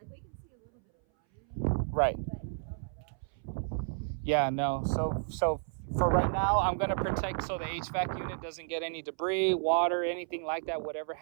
Right. Yeah, no. So for right now, I'm gonna protect so the HVAC unit doesn't get any debris, water, anything like that, whatever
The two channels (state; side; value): silent; left; 56 dB below the other